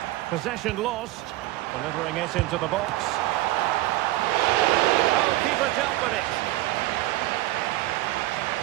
Possession lost. Delivering it into the box. Oh, keeper dealt with it.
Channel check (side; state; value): left; quieter; 17.3 dB